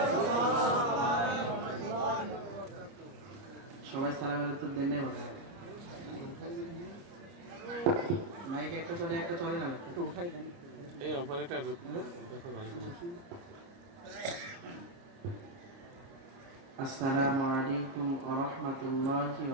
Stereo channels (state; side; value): late; left; 30 ms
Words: সবাই সালামের উত্তর দেন নাই মনে হয়। মাইক একটা চলে না একটু উঠাই দেন। এই অপারেটর দেখো ভালো করে। আসসালামু আলাইকুম ওয়া রাহমাতুল্লাহি